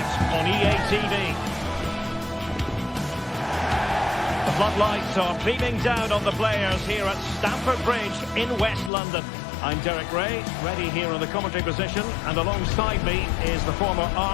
on EA TV. The floodlights are beaming down on the players here at Stamford Bridge in West London. I'm Derek Ray, ready here on the commentary position, and alongside me is the former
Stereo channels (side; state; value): right; drops out; at 8.9 s